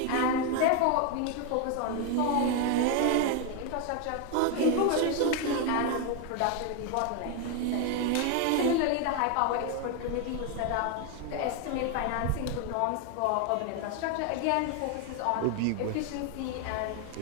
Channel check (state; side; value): different; both; correlation 0.01